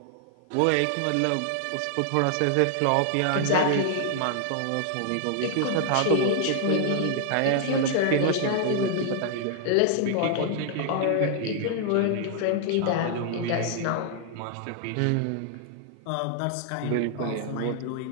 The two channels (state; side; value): different; both; correlation 0.00